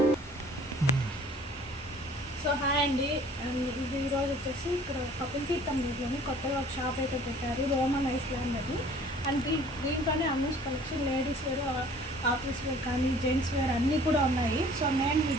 సో హాయ్ అండి, ఇది ఈరోజు వచ్చేసి ఇక్కడ కపిల్ తీర్థం రోడ్లోని కొత్తగా ఒక షాప్ అయితే పెట్టారు, రోమన్ ఐలాండ్ అని. అండ్ దీంట్లోనే Ammus collection ladies wear, office wear కానీ జెంట్స్ వేర్ అన్నీ కూడా ఉన్నాయి. సో నేను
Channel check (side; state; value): both; normal; correlation 0.52